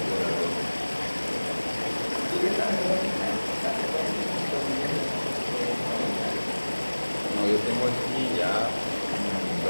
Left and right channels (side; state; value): both; inverted; correlation -1.00